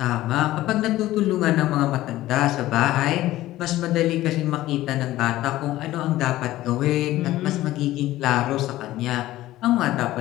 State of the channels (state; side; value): quieter; right; 15.7 dB